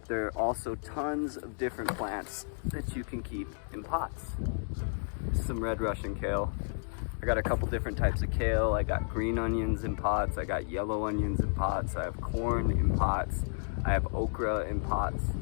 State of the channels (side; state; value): right; silent; digital silence